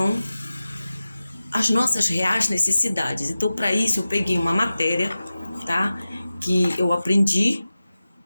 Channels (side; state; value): both; inverted; correlation -0.95